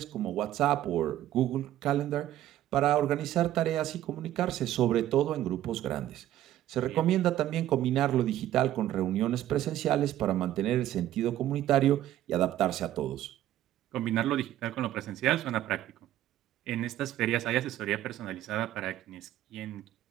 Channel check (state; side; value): quieter; left; 13.0 dB